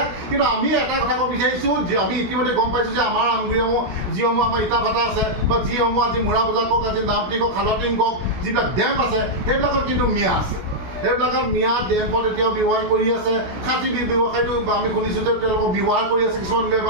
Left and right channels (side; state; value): left; late; 16 ms